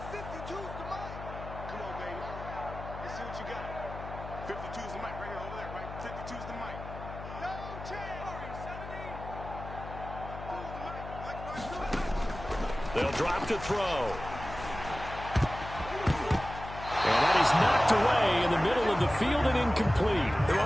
Come on, baby. Let's see what you got. 52 is the mic right here, over there, right? 52 is the mic. No chance. They'll drop to throw. And that is knocked away in the middle of the field and incomplete. They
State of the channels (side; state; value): left; noise; hum, 11 dB below the sound